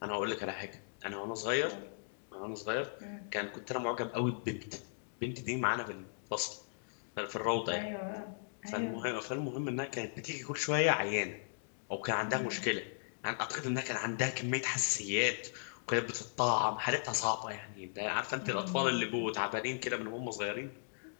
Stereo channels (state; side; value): silent; right; digital silence